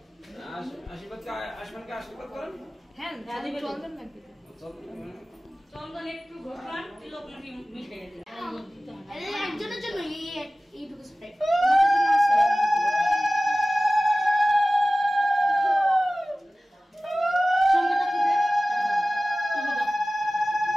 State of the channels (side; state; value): both; normal; correlation 0.97